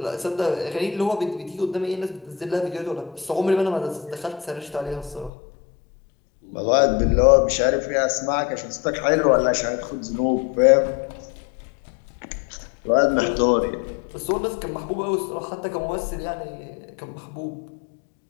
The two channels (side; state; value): right; drops out; at 5.3 s